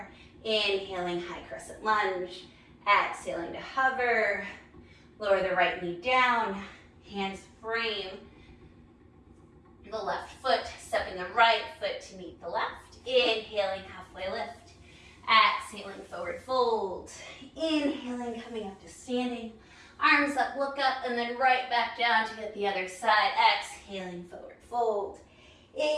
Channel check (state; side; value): identical; both; correlation 1.00